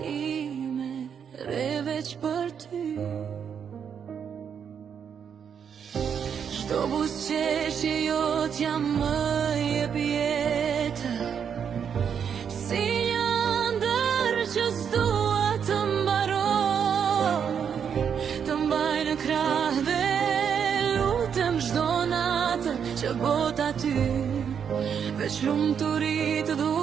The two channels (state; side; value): quieter; left; 7.5 dB